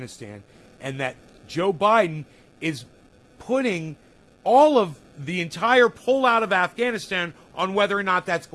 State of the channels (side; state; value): both; identical; correlation 1.00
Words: and that Joe Biden is putting all of the entire pullout of Afghanistan on whether or not that's